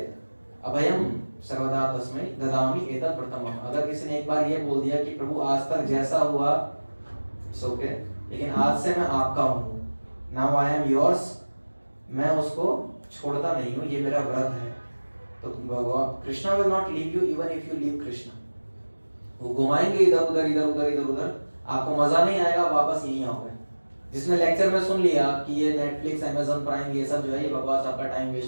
अभयम सर्वदा तस्मै ददामि एतत् प्रथमम्। अगर किसी ने एक बार ये बोल दिया कि प्रभु आज तक जैसा हुआ सो के, लेकिन आज से मैं आपका हूँ, नाउ आई एम योर्स, मैं उसको छोड़ता नहीं हूँ, ये मेरा व्रत है। तो Krishna will not leave you even if you leave Krishna. वो घुमाएंगे इधर उधर इधर उधर इधर उधर, आपको मजा नहीं आएगा, वापस यहीं आओगे। जिसने लेक्चर में सुन लिया कि ये नेटफ्लिक्स अमेज़न प्राइम ये सब जो है ये बकवास, आपका टाइम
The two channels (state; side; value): inverted; both; correlation -1.00